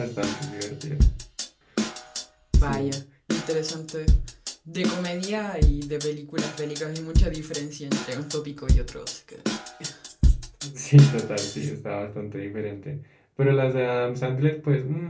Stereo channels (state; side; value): identical; both; correlation 1.00